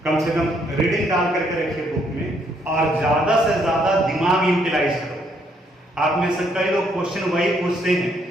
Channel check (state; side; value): normal; both; correlation 0.70